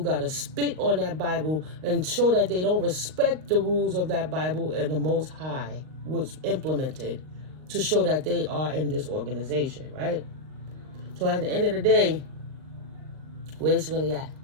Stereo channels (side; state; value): left; late; 38 ms